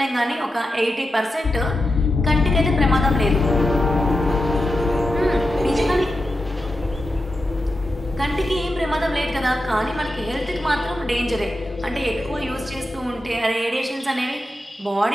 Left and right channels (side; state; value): both; normal; correlation 0.89